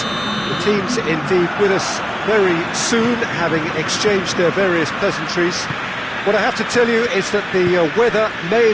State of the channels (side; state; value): right; noise; hum, 29 dB below the sound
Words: The teams indeed with us very soon, having exchanged their various pleasantries. What I have to tell you is that the weather may